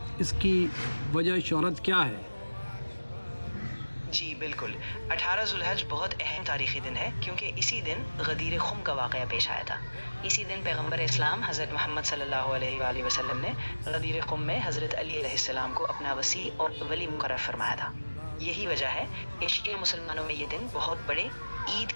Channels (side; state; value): both; inverted; correlation -1.00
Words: اس کی وجہ شہرت کیا ہے؟ جی بالکل، 18 ذی الحج بہت اہم تاریخی دن ہے کیونکہ اسی دن غدیر خم کا واقعہ پیش آیا تھا۔ اسی دن پیغمبر اسلام حضرت محمد صلی اللہ علیہ وآلہ وسلم نے غدیر خم میں حضرت علی علیہ السلام کو اپنا وصی اور ولی مقرر فرمایا تھا۔ یہی وجہ ہے کہ شیعہ مسلمانوں میں یہ دن بہت بڑے عید